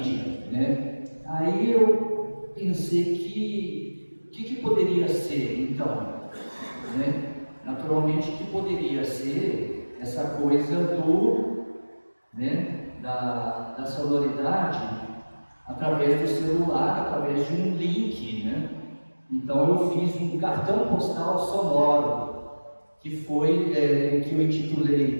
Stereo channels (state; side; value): inverted; both; correlation -1.00